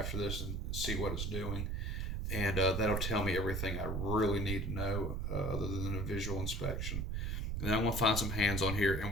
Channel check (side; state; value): right; noise; rumble, 1 dB below the sound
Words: this and see what it's doing. And that'll tell me everything I really need to know other than a visual inspection. And then I'm going to find some hands on here,